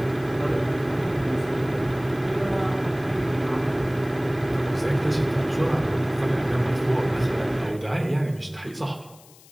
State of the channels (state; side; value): noise; left; hiss, 24 dB below the sound